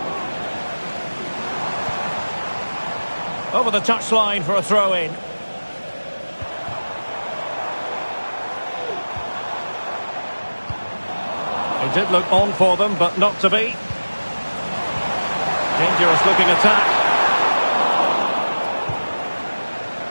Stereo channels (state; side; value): inverted; both; correlation -1.00